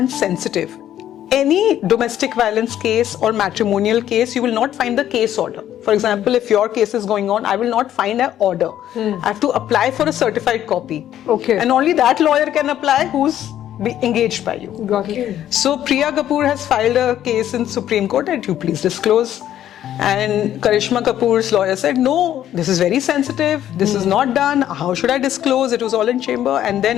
sensitive. Any domestic violence case or matrimonial case, you will not find the case order. For example, if your case is going on, I will not find an order. I have to apply for a certified copy. Okay. And only that lawyer can apply who's engaged by you. Got it. So Priya Kapoor has filed a case in Supreme Court that you please disclose. And Karishma Kapoor's lawyer said, no, this is very sensitive. This is not done. How should I disclose? It was all in chamber. And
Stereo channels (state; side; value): quieter; right; 11.5 dB